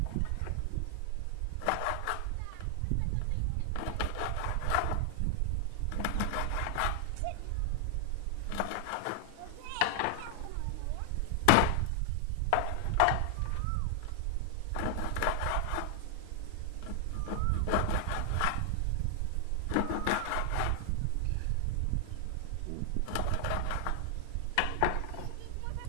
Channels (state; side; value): different; both; correlation 0.00